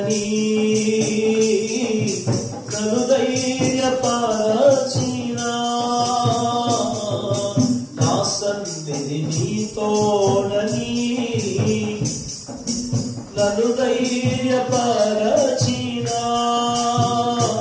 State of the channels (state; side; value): identical; both; correlation 1.00